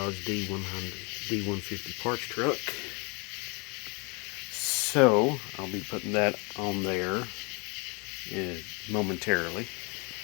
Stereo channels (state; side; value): quieter; right; 31.6 dB